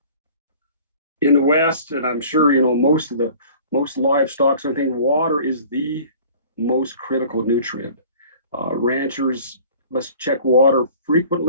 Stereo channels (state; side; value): inverted; both; correlation -0.47